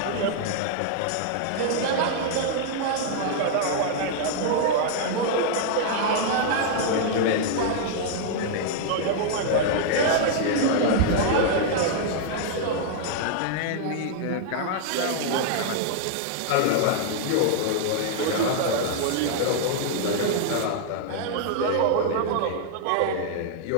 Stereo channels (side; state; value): both; different; correlation -0.01